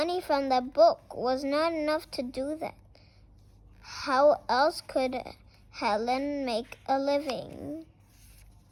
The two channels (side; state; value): both; identical; correlation 1.00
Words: from the book was not enough to do that. How else could Helen make a living?